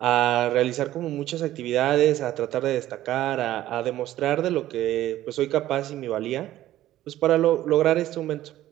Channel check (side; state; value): left; quieter; 14.0 dB